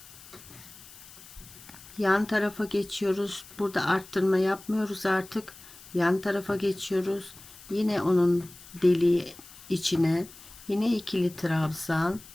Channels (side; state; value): left; noise; hiss, 19 dB below the sound